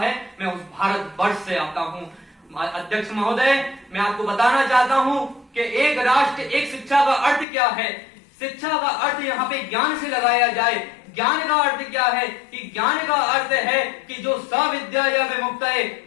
मैं उस भारतवर्ष से आता हूं। अध्यक्ष महोदय, मैं आपको बताना चाहता हूं कि एक राष्ट्र एक शिक्षा का अर्थ क्या है। शिक्षा का अर्थ यहाँ पे ज्ञान से लगाया जाए। ज्ञान का अर्थ क्या है कि ज्ञान का अर्थ है कि जो सविद्या या विमुक्त है,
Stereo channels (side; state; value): right; drops out; at 7.5 s